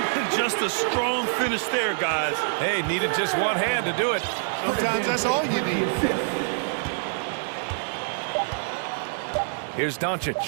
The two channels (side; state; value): left; silent; digital silence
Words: Just a strong finish there, guys. Hey, needed just one hand to do it. Sometimes that's all you need. Here's